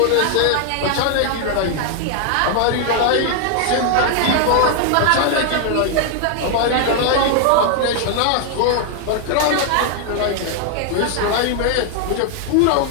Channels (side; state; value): both; different; correlation 0.00